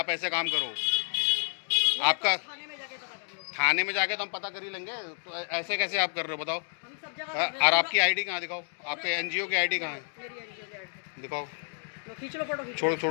ऐसे काम करो। आपका थाने में जाके पता कर लो। थाने में जाके तो हम पता कर ही लेंगे। तो ऐसे कैसे आप कर रहे हो बताओ? हम सब जगह। और आपकी आईडी कहाँ दिखाओ? आपके एनजीओ की आईडी कहाँ है? दिखाओ। खींच लो फोटो।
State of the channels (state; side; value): silent; right; 58 dB below the other